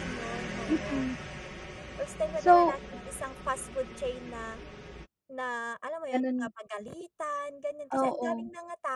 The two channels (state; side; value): identical; both; correlation 1.00